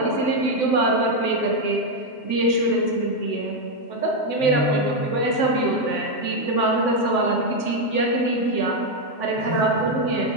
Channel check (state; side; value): late; right; 7.8 ms